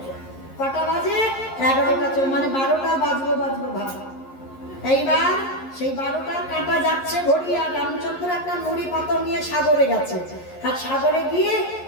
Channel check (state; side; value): late; right; 11 ms